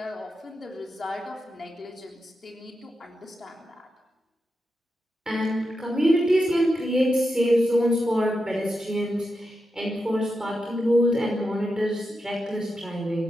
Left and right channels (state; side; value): normal; both; correlation 0.88